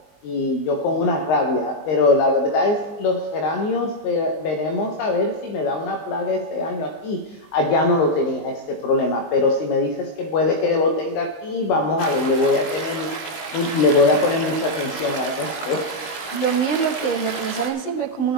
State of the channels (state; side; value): late; right; 19 ms